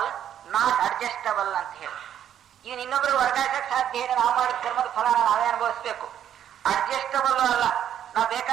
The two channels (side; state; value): left; quieter; 10.1 dB